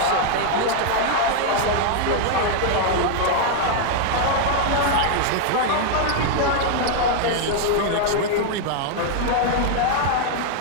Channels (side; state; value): both; different; correlation 0.00